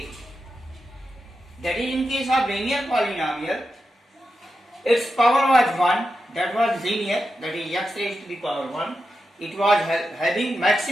That is, in case of linear polynomial, its power was 1, that was linear, that is x raised to the power 1. It was having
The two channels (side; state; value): both; normal; correlation 0.89